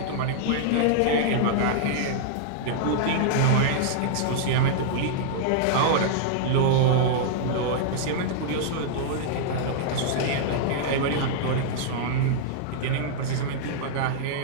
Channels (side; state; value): both; different; correlation -0.01